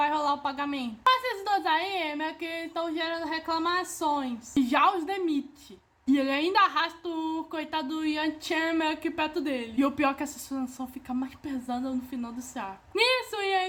rolar o pagamento? Mas esses 2 aí meio que estão gerando reclamações e já os demite. E ele ainda arrasta o coitado do Yang Chen meio que perto dele. E o pior é que essa situação fica mais pesada no final desse arco. Nisso, o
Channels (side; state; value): both; identical; correlation 1.00